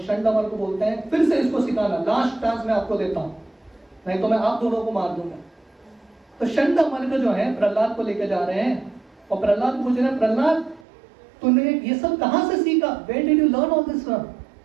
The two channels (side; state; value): left; drops out; at 10.9 s